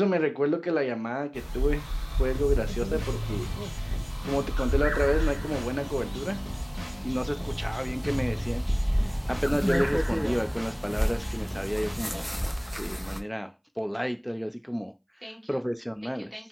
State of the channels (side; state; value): both; identical; correlation 1.00